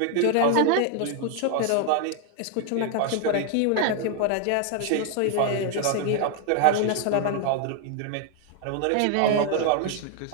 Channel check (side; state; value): both; different; correlation 0.00